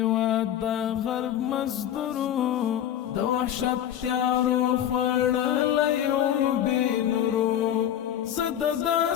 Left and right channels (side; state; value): right; quieter; 10.6 dB